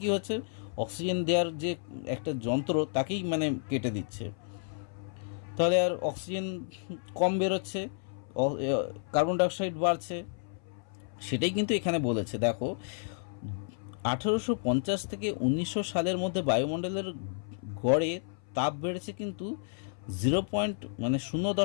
কি হচ্ছে? অক্সিজেন দেওয়ার যে একটা যন্ত্র তাকেই কেটে দিচ্ছে। তাহলে আর অক্সিজেন কম বেরোচ্ছে, কার্বন ডাইঅক্সাইড বাড়ছে। সেটাই কিন্তু এখানে বলেছে। দেখো, 1850 থেকে 1900 সালের মধ্যে বায়ুমণ্ডলের গড়ে তাপ বেড়েছে কিন্তু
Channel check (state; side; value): silent; right; 57 dB below the other